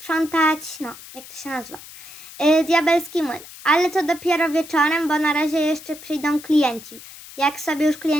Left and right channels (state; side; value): noise; left; hiss, 17 dB below the sound